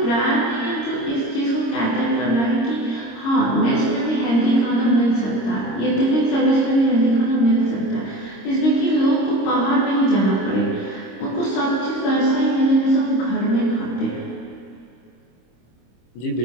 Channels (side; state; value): right; late; 26 ms